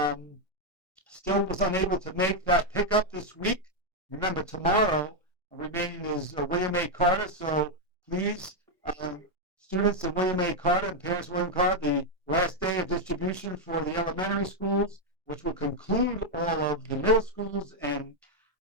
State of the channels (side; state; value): both; normal; correlation 0.01